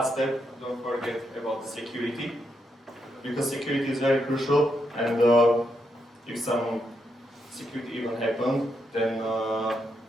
step, don't forget about the security, because security is very crucial, and if some security event happens, then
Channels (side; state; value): both; normal; correlation 0.81